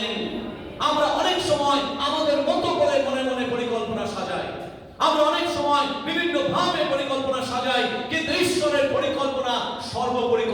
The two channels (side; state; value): both; identical; correlation 1.00